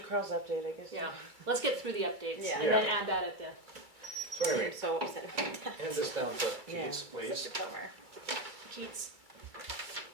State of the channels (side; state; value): left; late; 2.3 ms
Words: Carl's update, I guess. Yeah, let's get through the updates Yeah. and then add that at the. So anyway, I'm so upset about that. hand this down to Yeah. Keith, please. Such a bummer. Keats.